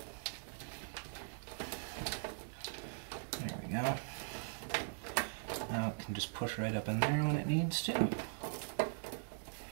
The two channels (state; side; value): silent; left; digital silence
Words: There we go. Now it can just push right up in there when it needs to. We'll